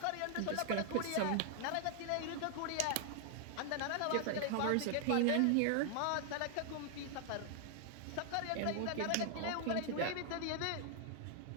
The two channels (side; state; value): both; different; correlation 0.00